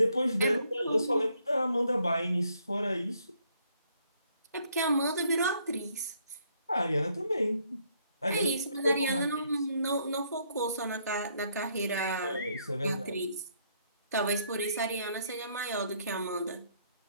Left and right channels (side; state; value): both; inverted; correlation -0.69